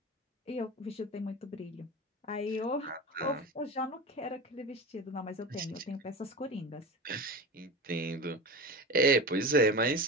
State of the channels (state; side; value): normal; both; correlation 0.28